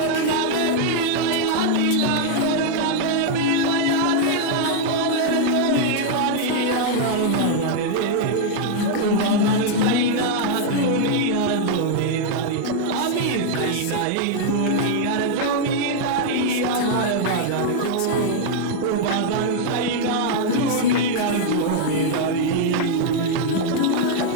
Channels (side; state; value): both; different; correlation 0.00